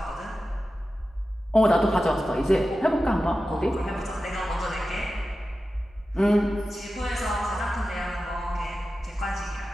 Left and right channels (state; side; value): normal; both; correlation 0.93